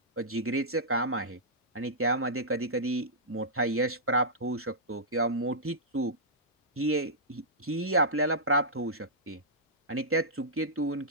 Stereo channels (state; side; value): normal; both; correlation -0.13